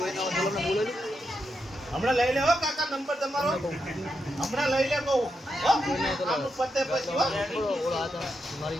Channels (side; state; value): both; normal; correlation 0.84